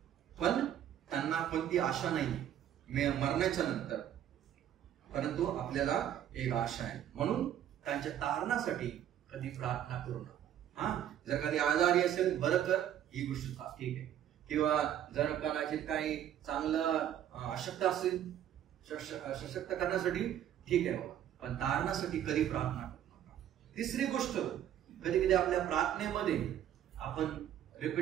पण त्यांना कोणती आशा नाही मरण्याच्या नंतर. परंतु आपल्याला एक आशा आहे. म्हणून त्यांच्या तारणासाठी कधी प्रार्थना करू नका. जर कधी आजारी असेल, बरं कर, ही गोष्ट ठीक आहे. किंवा जर कदाचित काही चांगलं अशक्त असेल, सशक्त करण्यासाठी ठीक आहे बाबा, पण तारणासाठी कधी प्रार्थना करू नका. तिसरी गोष्ट, कधी कधी आपल्या प्रार्थनेमध्ये आपण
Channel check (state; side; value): quieter; left; 10.7 dB